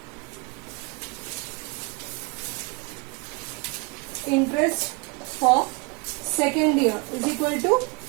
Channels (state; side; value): quieter; left; 30.8 dB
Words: interest for second year is equal to